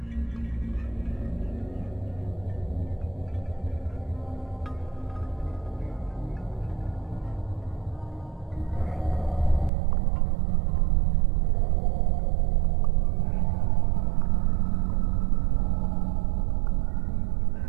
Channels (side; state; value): left; drops out; at 9.7 s